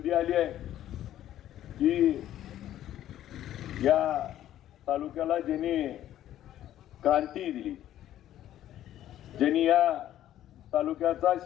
आली आहे की या तालुक्याला ज्यांनी क्रांती दिली, ज्यांनी या तालुक्याचा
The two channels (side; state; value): right; quieter; 12.3 dB